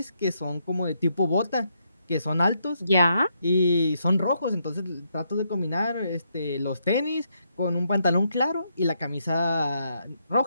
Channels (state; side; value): inverted; both; correlation -0.77